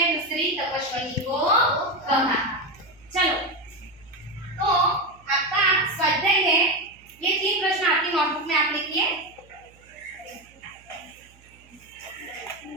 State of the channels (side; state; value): right; noise; hum, 28 dB below the sound